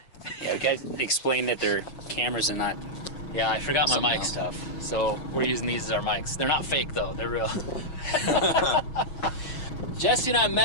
Yeah, we got to explain that they're cameras and not. Yeah, I forgot my mic stuff. So we're using these as our mics. They're not fake though. They're real. Jesse and I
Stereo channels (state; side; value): late; right; 6.2 ms